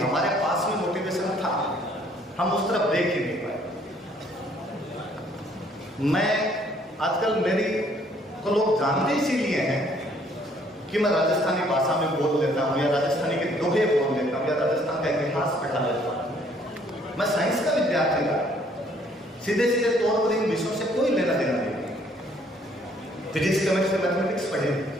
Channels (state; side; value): normal; both; correlation 0.63